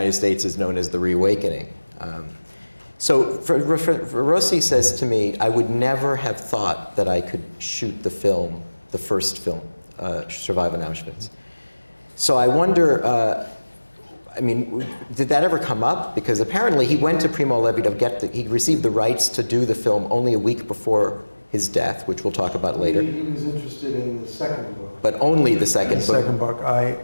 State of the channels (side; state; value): both; inverted; correlation -1.00